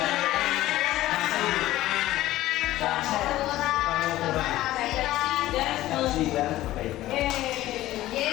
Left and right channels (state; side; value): quieter; right; 15.5 dB